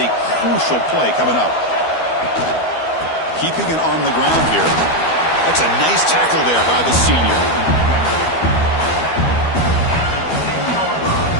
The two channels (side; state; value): right; late; 12 ms